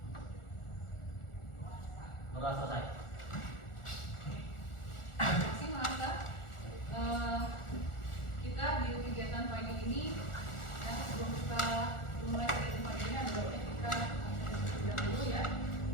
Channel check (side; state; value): right; late; 1.4 ms